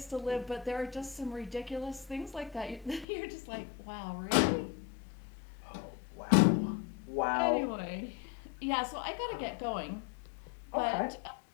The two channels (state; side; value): drops out; right; at 3.1 s